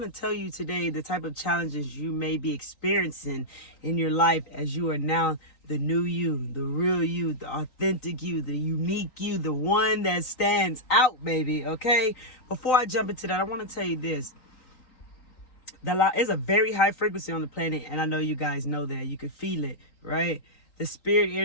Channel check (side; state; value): right; late; 3.9 ms